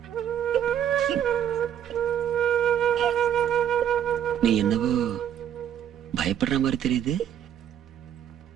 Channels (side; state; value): left; quieter; 9.8 dB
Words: நீ என்னவோ பயப்படுற மாதிரி தெரியுது.